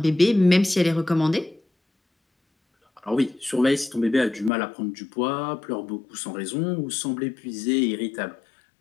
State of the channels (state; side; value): drops out; right; at 4.5 s